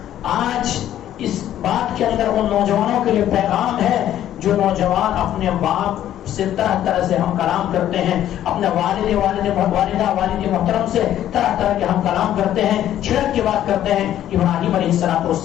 آج اس بات کے اندر ان نوجوانوں کے لیے پیغام ہے جو نوجوان اپنے باپ سے طرح طرح سے ہم کلام کرتے ہیں، اپنے والدہ والد محترم سے طرح طرح کے ہم کلام کرتے ہیں، چھڑک کی بات کرتے ہیں. ابراہیم علیہ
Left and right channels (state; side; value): quieter; right; 11.8 dB